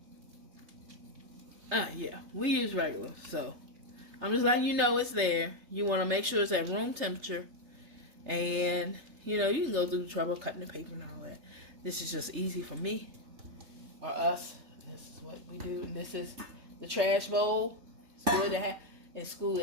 Yeah, we use regular. So I'm just letting you know it's there. You want to make sure it's at room temperature. And, you know, you can go through the trouble of cutting the paper and all that. This is just easy for me or us. This is what we do. And this is the trash bowl. It's good to have. In school,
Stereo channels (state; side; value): late; left; 3.3 ms